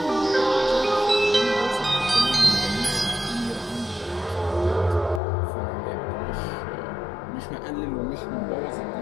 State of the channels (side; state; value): right; drops out; at 5.2 s